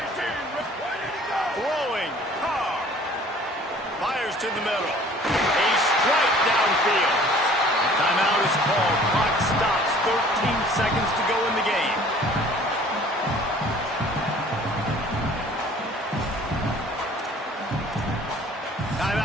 to the middle. A strike downfield. Timeout is called. Clock stops. 13 seconds to go in the game.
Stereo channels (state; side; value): normal; both; correlation 0.51